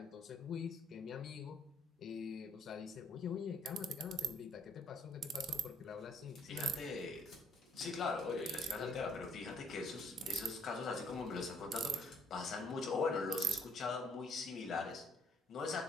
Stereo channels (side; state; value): both; normal; correlation 0.64